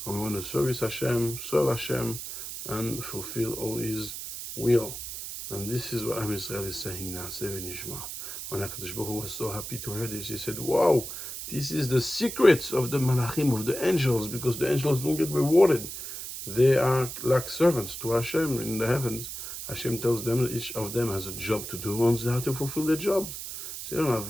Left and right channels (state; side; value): noise; right; hiss, 8 dB below the sound